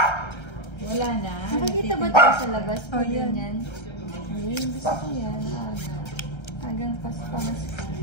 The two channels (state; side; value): late; right; 1.3 ms